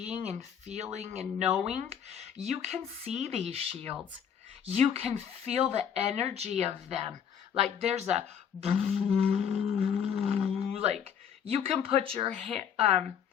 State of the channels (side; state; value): right; quieter; 8.0 dB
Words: and feeling and knowing, you can see these shields. You can feel the energy of them. Like, there's a like, you can put your hand